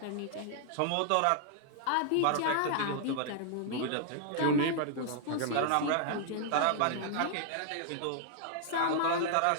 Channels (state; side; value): different; both; correlation -0.01